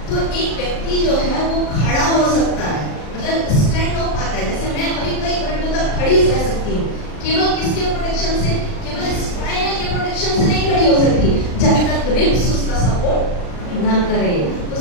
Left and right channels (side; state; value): right; late; 39 ms